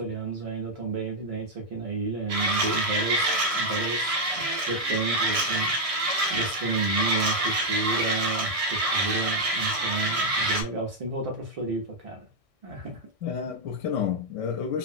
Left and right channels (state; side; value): late; left; 1.6 ms